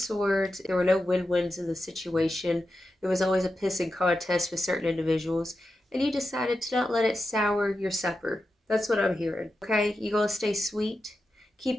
there were no win-wins in the situation. There was always a pissing contest with certain individuals, and you decided to not let it sour your supper. That's what I'm hearing. Okay, you gonna stay sweet?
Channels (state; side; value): normal; both; correlation 0.90